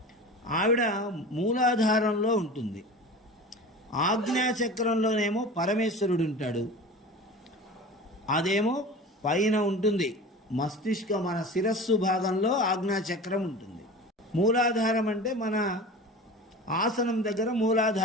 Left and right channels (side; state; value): both; normal; correlation 0.35